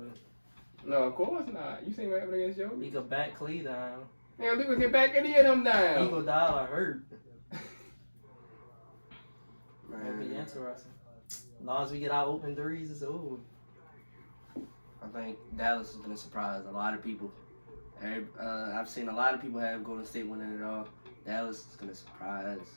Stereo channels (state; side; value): inverted; both; correlation -1.00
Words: No, of course not. You seen what happened against Joe? He could back Clay down. Man, Luka can back any of them down. He could die or hurt. That'll be interesting. As long as we get our open threes, it's over. I think Dallas is going to surprise a lot of people. I've seen a lot of people have Golden State winning it all. Dallas is going to surprise